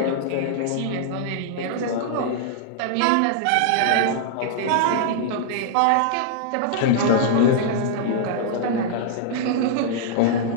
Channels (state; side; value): different; both; correlation -0.01